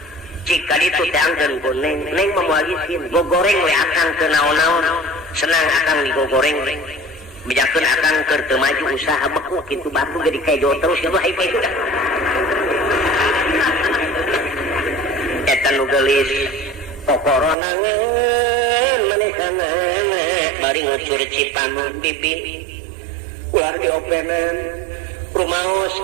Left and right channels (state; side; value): drops out; left; at 17.6 s